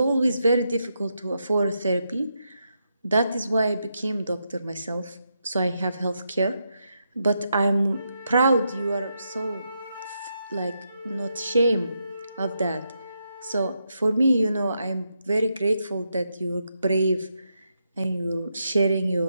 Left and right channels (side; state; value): both; inverted; correlation -0.83